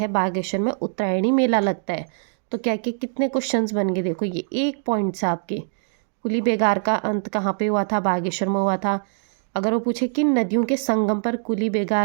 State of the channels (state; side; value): silent; left; digital silence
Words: बागेश्वर में उत्तरायणी मेला लगता है। तो क्या कि कितने क्वेश्चंस बन गए, देखो ये 1 पॉइंट से आपके। कुली बेगार का अंत कहाँ पे हुआ था, बागेश्वर में हुआ था। अगर वो पूछे किन नदियों के संगम पर कुली